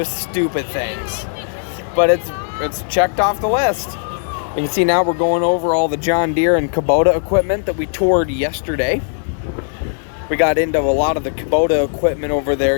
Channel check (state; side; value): silent; right; digital silence